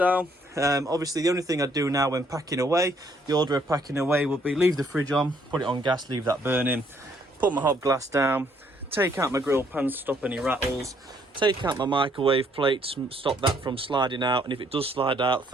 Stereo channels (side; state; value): both; normal; correlation 0.67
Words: Obviously the only thing I do now when packing away, the order of packing away will be leave the fridge on, put it on gas, leave that burning, put my hob glass down, take out my grill pan to stop any rattles, take out my microwave plate to stop that from sliding out, and if it does slide out,